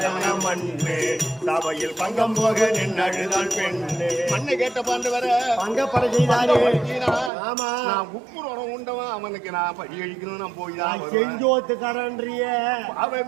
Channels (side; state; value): left; drops out; at 7.3 s